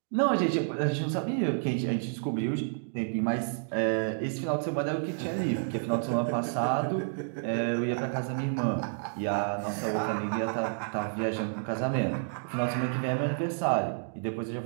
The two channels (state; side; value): silent; left; digital silence